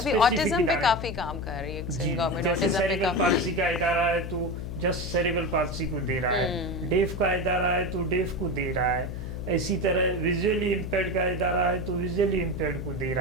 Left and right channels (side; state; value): left; noise; hum, 6 dB below the sound